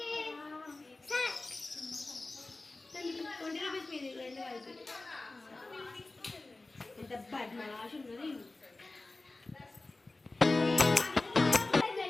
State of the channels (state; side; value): quieter; right; 3.2 dB